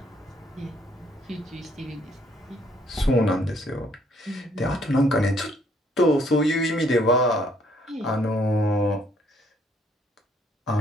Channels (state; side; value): normal; both; correlation 0.66